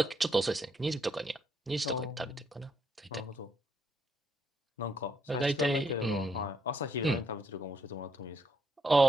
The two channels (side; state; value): both; normal; correlation 0.75